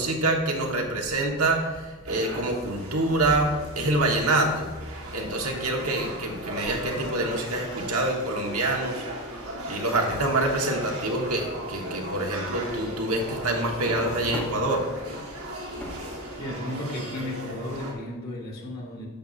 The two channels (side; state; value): both; normal; correlation 0.14